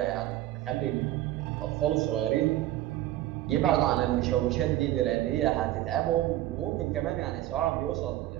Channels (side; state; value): left; quieter; 14.6 dB